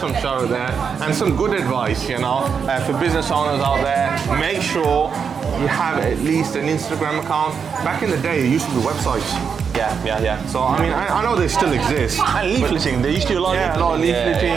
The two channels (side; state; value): left; quieter; 6.4 dB